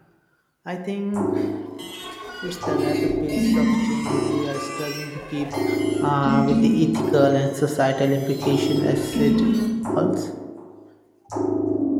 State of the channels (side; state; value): both; identical; correlation 1.00